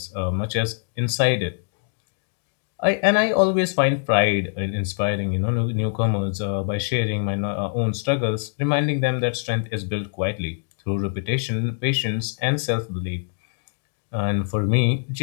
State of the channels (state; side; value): silent; right; digital silence